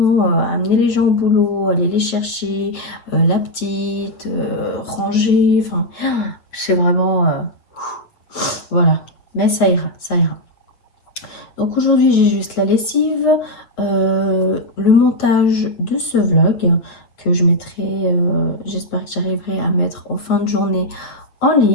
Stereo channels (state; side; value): late; right; 8.3 ms